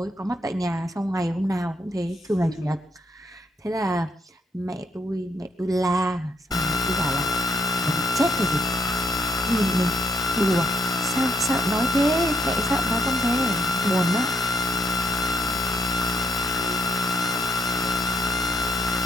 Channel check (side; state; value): both; normal; correlation 0.74